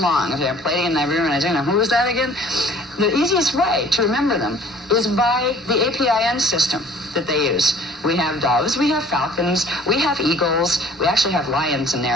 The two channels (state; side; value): normal; both; correlation 0.51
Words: They're Palladian, Nibirian, Ashayana. Who was that again? The easiest way to remember them is by the APIN system that they use. We have doves, we have falcons, we have eagles, we actually have lions in